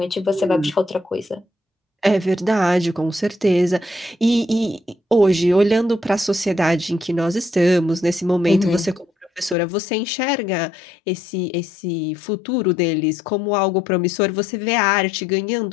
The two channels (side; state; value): right; drops out; at 9.6 s